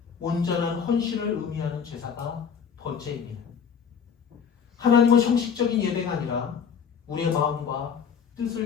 온전한 헌신을 의미하는 제사가 번제입니다. 하나님은 형식적인 예배가 아니라 우리의 마음과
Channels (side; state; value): right; quieter; 6.9 dB